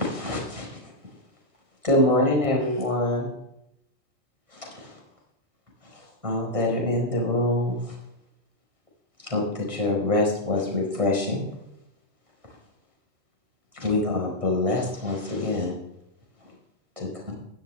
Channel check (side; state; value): left; late; 1.6 ms